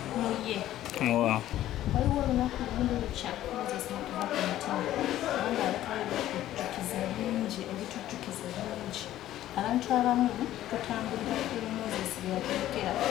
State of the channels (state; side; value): quieter; right; 13.4 dB